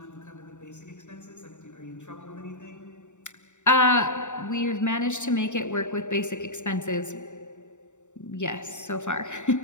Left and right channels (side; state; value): right; late; 0.84 ms